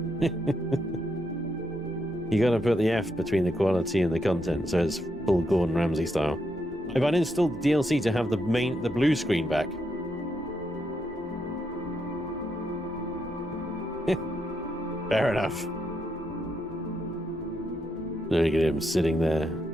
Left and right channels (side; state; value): right; noise; rumble, 25 dB below the sound